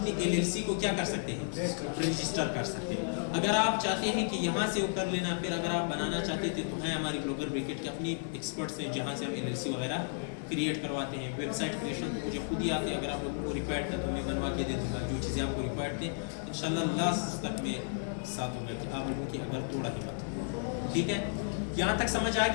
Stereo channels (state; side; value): silent; right; 56 dB below the other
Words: LLC को क्या कर सकते हैं, रजिस्टर कर सकते हैं। अगर आप चाहते हैं कि यहाँ से वो कर लेना, फिर अगर आप बनाना चाहते थे तो हैं हमारी ब्लॉगर ब्रिकेट के अपनी एक्सपर्ट्स हैं जहाँ से हम LLC वगैरह क्रिएट करवाते हैं। वेबसाइट क्रिएशन तो मुझे खुद ही आते हैं, अगर आप लोगों को रिक्वायर्ड था तो मैं बनवा के दे दूँगा जो चीज़ें आपको रिक्वायर्ड थे। इंशाल्लाह लास्ट तक में साथ होगा कि आप लोगों की अगर थोड़ा हिम्मत हो, ठीक है। यहाँ तक समझ आ